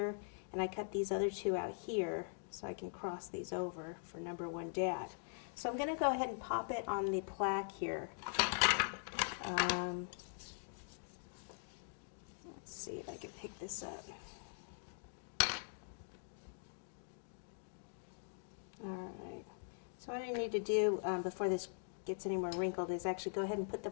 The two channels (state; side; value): silent; right; digital silence